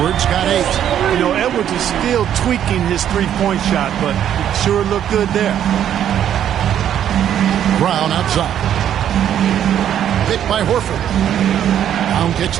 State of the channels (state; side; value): quieter; left; 10.1 dB